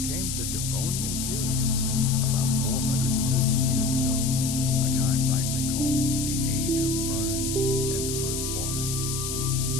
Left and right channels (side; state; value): left; noise; hiss, 4 dB below the sound